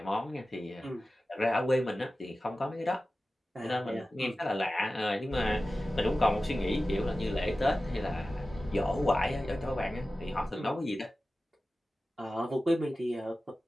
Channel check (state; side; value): normal; both; correlation 0.95